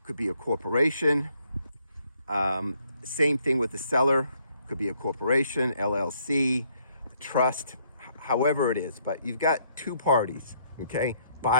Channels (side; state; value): both; inverted; correlation -0.69